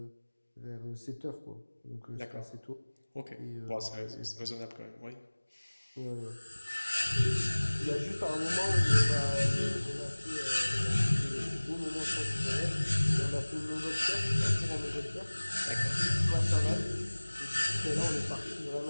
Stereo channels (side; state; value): both; inverted; correlation -1.00